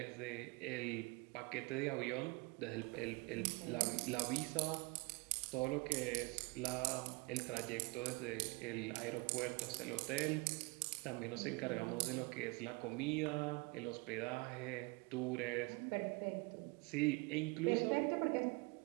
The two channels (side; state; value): left; quieter; 27.1 dB